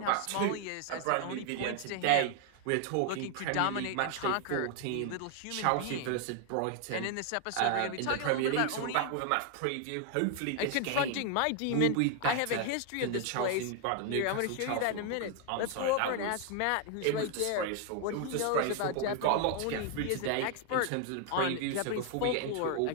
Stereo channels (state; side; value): different; both; correlation 0.00